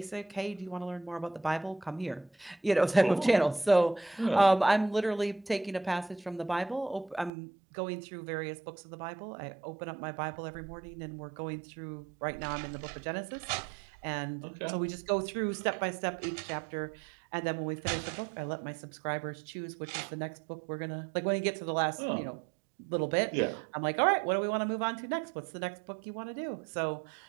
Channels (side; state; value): left; drops out; at 7.3 s